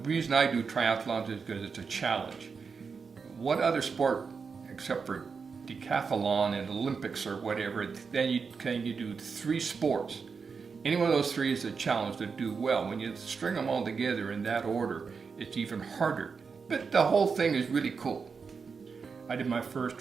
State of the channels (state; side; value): quieter; left; 5.4 dB